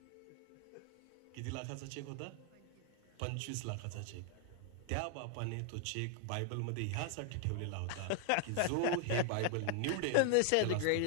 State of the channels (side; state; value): both; different; correlation 0.00